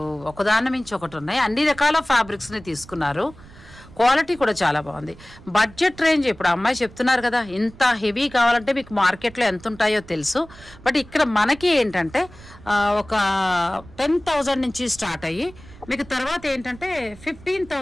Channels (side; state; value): right; noise; rumble, 21 dB below the sound